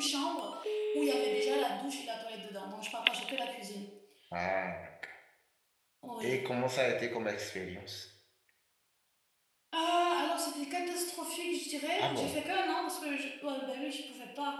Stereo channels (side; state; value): both; identical; correlation 1.00